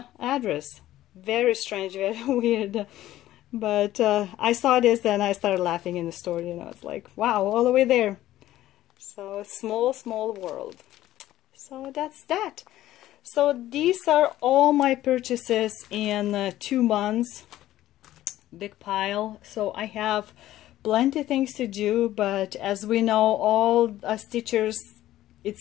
address. Very strange, very weird. But I saw this and I started laughing in the store, you know, it's like, wow, all the way there. So small, small world. So that's that. So these are all my purchases in 2 months. Big pile. So I have plenty of things to do, but as we know, all stitchers,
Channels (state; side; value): quieter; right; 14.2 dB